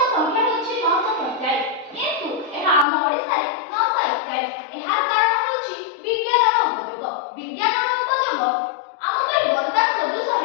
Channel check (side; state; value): right; drops out; at 2.9 s